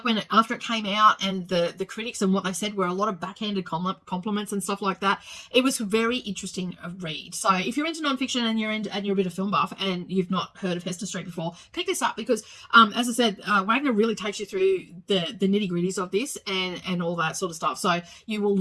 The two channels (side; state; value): both; identical; correlation 1.00